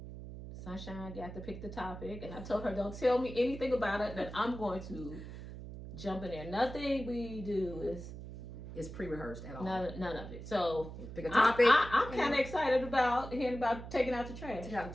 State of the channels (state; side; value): noise; right; hum, 11 dB below the sound